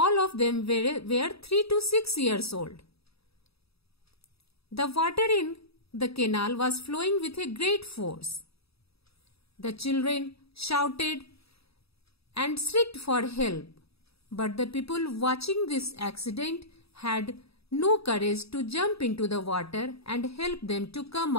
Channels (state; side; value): late; right; 0.77 ms